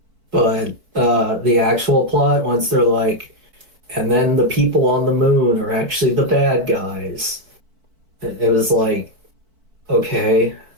But the actual plot, once they're like, and then the people on the moon are actually the bad guys. It was like, okay.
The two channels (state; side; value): late; left; 4.5 ms